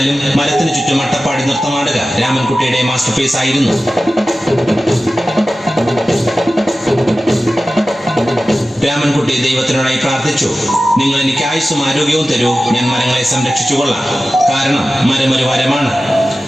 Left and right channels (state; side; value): normal; both; correlation 0.95